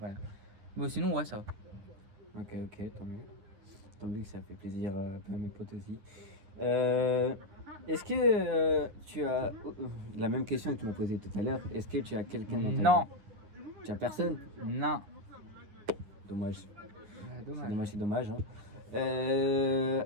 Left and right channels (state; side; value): late; left; 9.9 ms